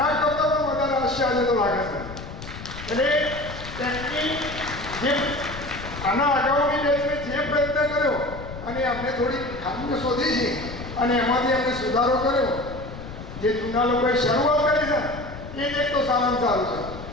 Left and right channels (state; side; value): noise; left; rumble, 11 dB below the sound